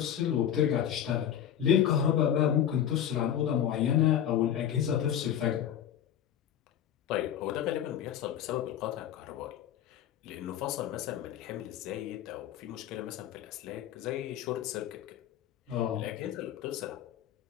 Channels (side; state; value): right; quieter; 10.0 dB